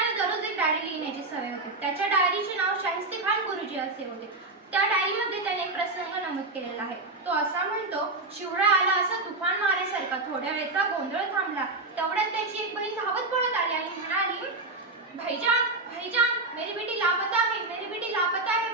दररोज एक डायरी लिहिण्याची सवय होती. त्याच्या डायरीचे नाव शाहिस्तेखान गुरुजी असे होते. त्या डायरीमध्ये त्याने एक प्रसंग नमूद केलेला आहे. तो असा म्हणतो, शिवराय आला असा तुफान मारेसारखा. थोड्या वेळचा गोंधळ थांबला. तेवढ्यात त्याची एक बहीण धावत पळत आली आणि म्हणाली, भाईजान भाईजान मेरी बेटी लापता है, मेरी बेटी लापता है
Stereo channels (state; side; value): quieter; left; 3.1 dB